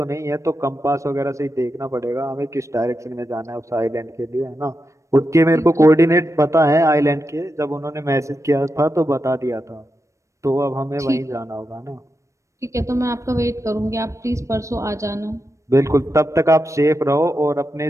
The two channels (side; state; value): left; late; 0.15 ms